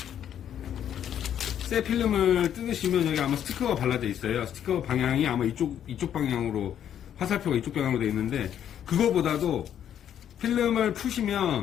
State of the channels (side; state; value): right; quieter; 9.8 dB